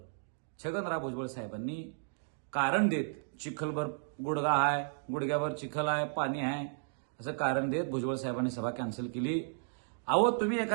छगनराव भुजबळ साहेबांनी कारण देत चिखलभर गुडगा आहे, गुडघ्यावर चिखल आहे, पाणी आहे असं कारण देत भुजबळ साहेबांनी सभा कॅन्सल केली। अहो तुम्ही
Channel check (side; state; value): left; silent; digital silence